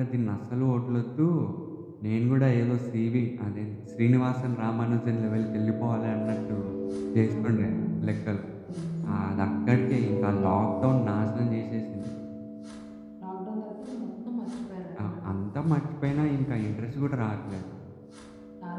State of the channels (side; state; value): both; identical; correlation 1.00